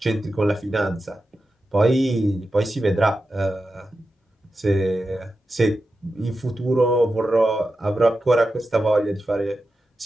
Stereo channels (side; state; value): both; normal; correlation 0.91